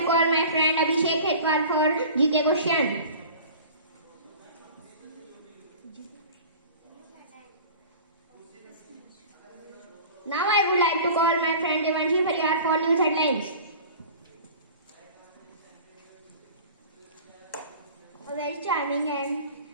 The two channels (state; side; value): inverted; both; correlation -0.41